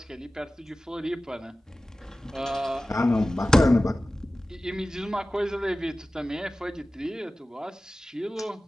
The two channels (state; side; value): normal; both; correlation 0.96